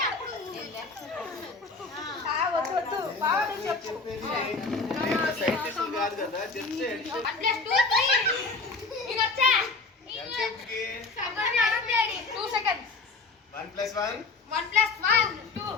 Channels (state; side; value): quieter; right; 3.9 dB